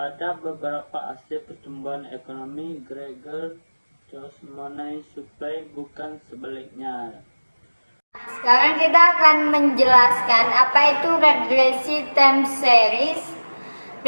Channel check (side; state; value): both; inverted; correlation -1.00